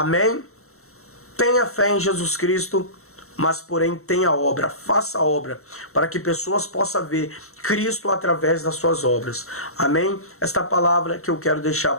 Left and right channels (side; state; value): right; late; 0.63 ms